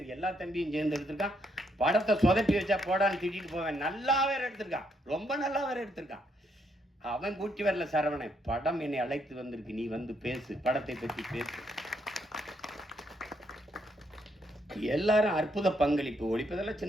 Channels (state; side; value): normal; both; correlation 0.75